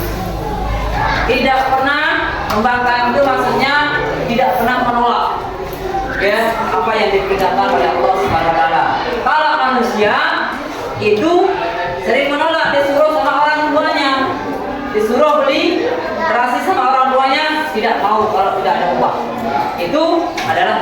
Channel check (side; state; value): both; identical; correlation 1.00